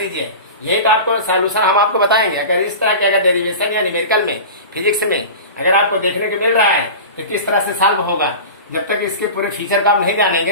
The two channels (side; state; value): both; inverted; correlation -0.32